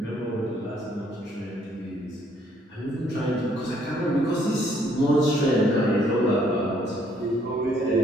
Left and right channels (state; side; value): normal; both; correlation 0.67